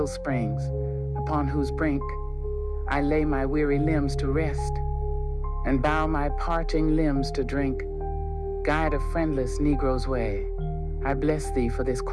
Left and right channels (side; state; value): both; identical; correlation 1.00